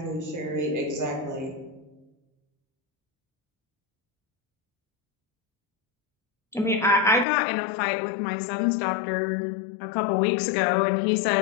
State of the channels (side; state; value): right; drops out; at 7.2 s